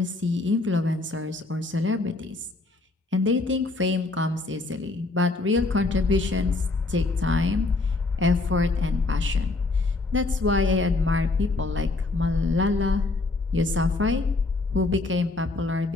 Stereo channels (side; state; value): right; quieter; 3.3 dB